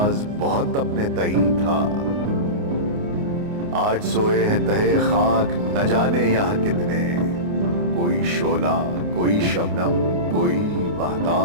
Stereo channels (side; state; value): left; late; 29 ms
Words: बहुत अपने तई था। आज सोए हैं तहे खाक न जाने यहां कितने, कोई शोला कोई शबनम कोई